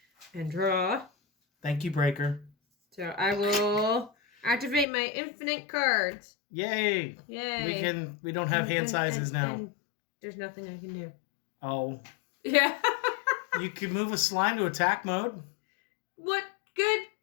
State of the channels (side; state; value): right; drops out; at 4.9 s